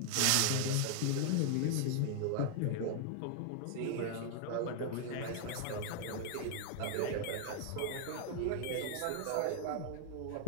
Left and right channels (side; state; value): both; different; correlation 0.00